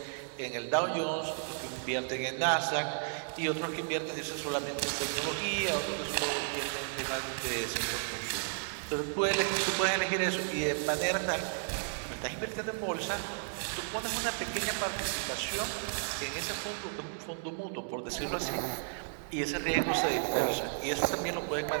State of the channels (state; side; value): silent; left; digital silence